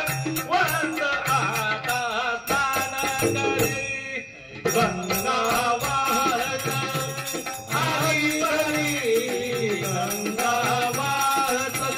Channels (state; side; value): identical; both; correlation 1.00